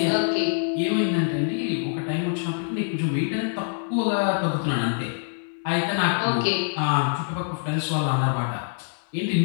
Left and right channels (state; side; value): silent; right; 62 dB below the other